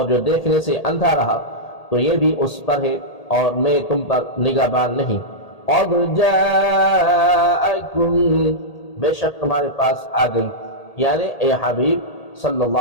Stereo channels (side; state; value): right; late; 1.8 ms